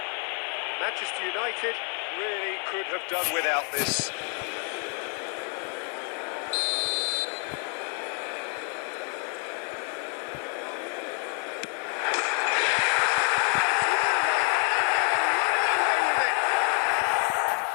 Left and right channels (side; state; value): right; quieter; 36.2 dB